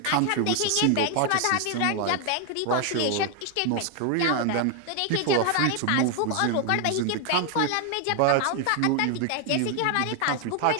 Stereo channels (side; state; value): both; different; correlation 0.00